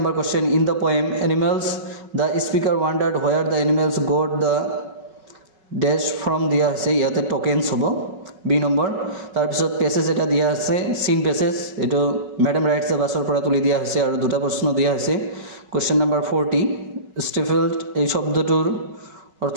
question in the poem animals the speaker wondered where the animals got the dash from দিয়া আছে ইয়াতে tokens হ'ব b number তাৰ পিছত passage এটা দিয়া আছে scene passage এটো ম্যাডাম ৰাইটস দ্য বাসৰ পৰা তুলি দিয়া হৈছে আৰু দুটা প্ৰশ্ন দিয়া আছে question number 40 stifled এই শব্দটোৰ অৰ্থ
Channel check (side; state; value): left; late; 5.3 ms